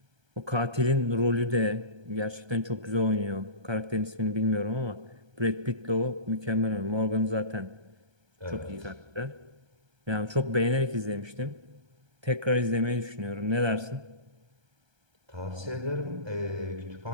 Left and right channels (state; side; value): late; left; 1.3 ms